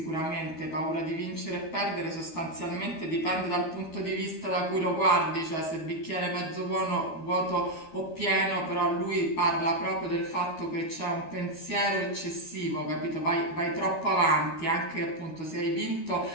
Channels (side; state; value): right; late; 12 ms